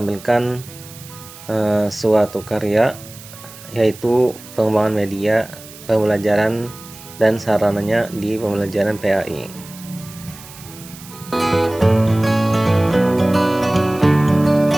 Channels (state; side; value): noise; right; hiss, 18 dB below the sound